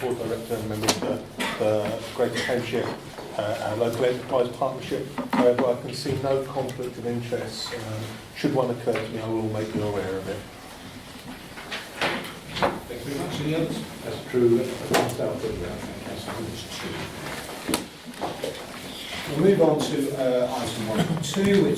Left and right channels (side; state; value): both; identical; correlation 1.00